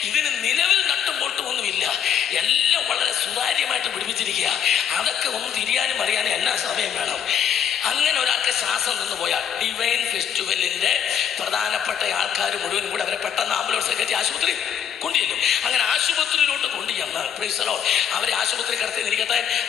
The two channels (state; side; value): quieter; right; 8.8 dB